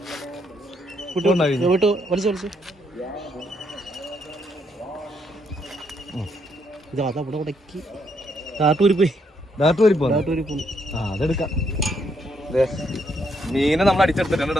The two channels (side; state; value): both; normal; correlation 0.74